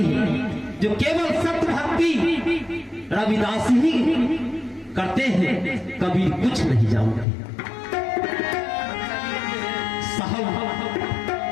है, जो केवल सत्य भक्ति रविदास ही करते हैं, कबीर कुछ नहीं जानते। साहब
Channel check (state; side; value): drops out; right; at 7.2 s